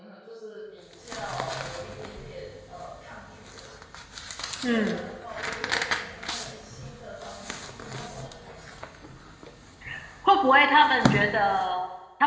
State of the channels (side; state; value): both; identical; correlation 1.00